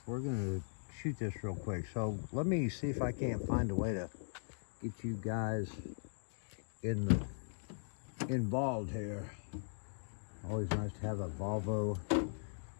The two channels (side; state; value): right; silent; digital silence